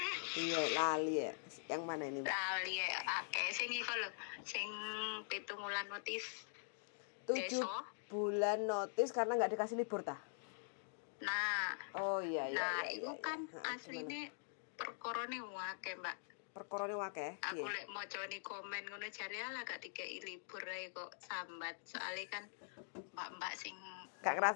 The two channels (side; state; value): right; silent; digital silence